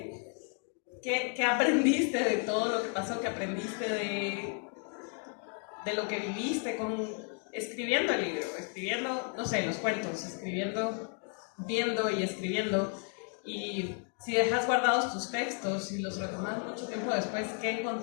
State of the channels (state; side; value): quieter; right; 39.5 dB